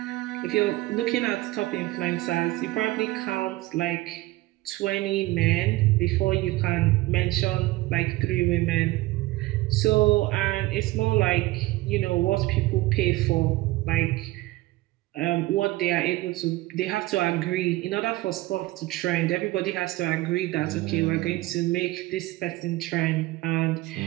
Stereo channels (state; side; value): quieter; left; 18.8 dB